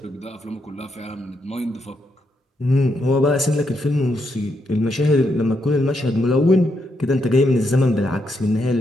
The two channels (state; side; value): normal; both; correlation 0.80